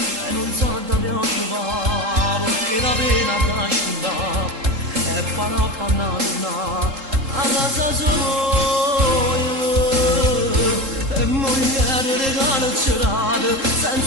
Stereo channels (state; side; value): late; left; 3.7 ms